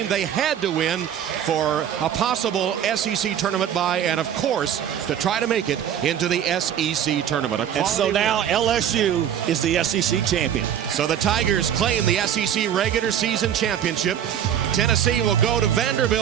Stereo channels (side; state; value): left; quieter; 9.7 dB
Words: they had to win for a possible SEC tournament bye, and, of course, to try to make it into the SEC tournament. And so now LSU is the SEC champion. So the Tigers claim the SEC regular season championship. Tennessee will go to